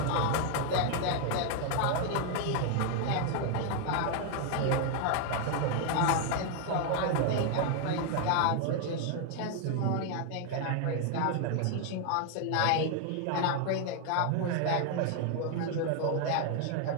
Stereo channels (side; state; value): both; different; correlation 0.00